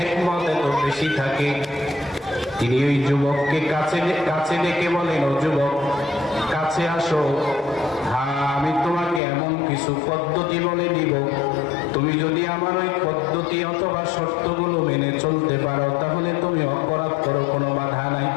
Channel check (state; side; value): drops out; right; at 9.2 s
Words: এত বেশি থাকে। তিনি ওই যুবককে কাছে ডেকে বলেন, ও যুবক কাছে আসো, হ্যাঁ আমি তোমাকে এমন কিছু পদ্ধতি বলে দিব, তুমি যদি আমার ওই পদ্ধতি অথবা শর্তগুলো মেনে চলতে পারো তাহলে তুমি অপরাধ করো, কোনো বাধা নাই।